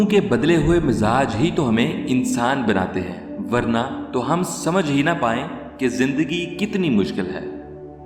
के बदले हुए मिजाज ही तो हमें इंसान बनाते हैं, वरना तो हम समझ ही ना पाएं कि जिंदगी कितनी मुश्किल है।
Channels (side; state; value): both; identical; correlation 1.00